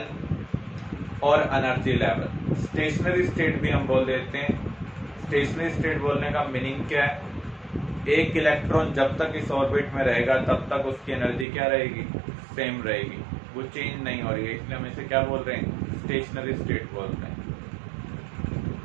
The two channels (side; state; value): left; drops out; at 11.5 s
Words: और एनर्जी लेवल. स्टेशनरी स्टेट भी हम बोल देते हैं. स्टेशनरी स्टेट बोलने का मीनिंग क्या है? एक इलेक्ट्रॉन जब तक इस ऑर्बिट में रहेगा तब तक उसकी एनर्जी क्या रहेगी? सेम रहेगी, वो चेंज नहीं हो रही है. इसलिए हम इसे क्या बोल रहे हैं? स्टेशनरी स्टेट बोल रहे हैं.